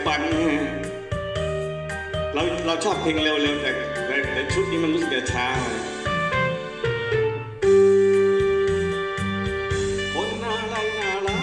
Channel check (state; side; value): identical; both; correlation 1.00